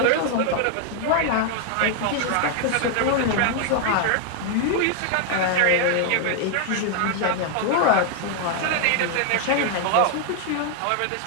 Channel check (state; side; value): different; both; correlation 0.00